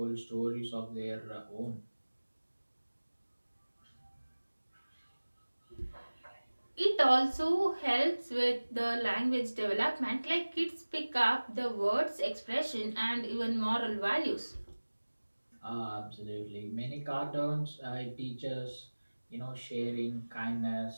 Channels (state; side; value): inverted; both; correlation -1.00